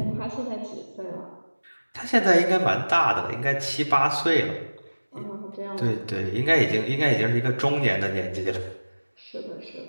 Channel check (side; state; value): both; inverted; correlation -1.00